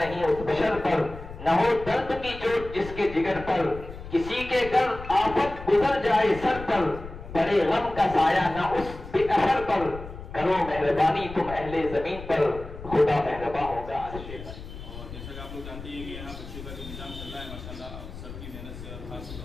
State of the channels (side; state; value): left; noise; rumble, 13 dB below the sound